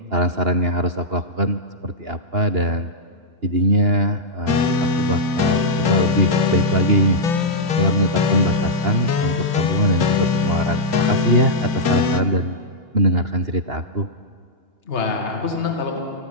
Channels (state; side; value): late; left; 2.9 ms